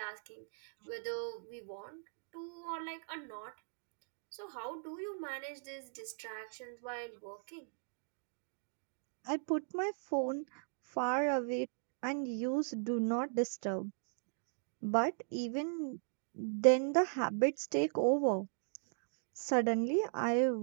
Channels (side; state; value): left; silent; digital silence